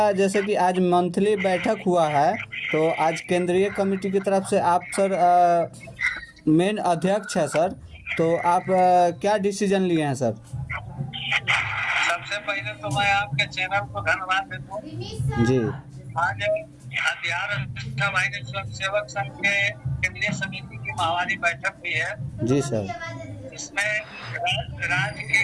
जैसे कि आज मंथली बैठक हुआ है, तो आज केंद्रीय कमेटी की तरफ से आप सर मेन अध्यक्ष है सर, तो आप क्या डिसीजन लिए हैं सर? सबसे पहले तो मैं आपके चैनल को धन्यवाद देता हूँ। जी आज बिहार वाहिनी स्वयंसेवक संघ के केंद्रीय समिति की माहवारी बैठक हुई है। जी सर। इसमें राज्य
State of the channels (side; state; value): both; identical; correlation 1.00